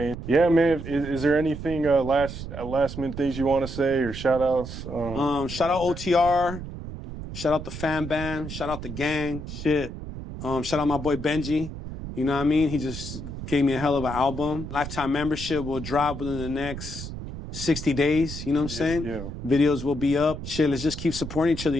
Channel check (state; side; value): noise; right; rumble, 9 dB below the sound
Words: Yeah, man. Is there anything last minute things you want to say or shout outs? shout out OTR. Shout out the fan band. Shout out the gang. Shit. Shout out my boy Benji. You know what I mean? He just gave me a hell of an album. Lifetime membership will drop within the next 60 days. You know what I'm saying? Yeah. Videos will be up. Shit, let's just keep supporting each other,